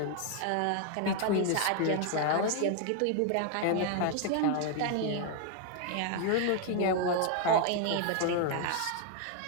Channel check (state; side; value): different; both; correlation 0.00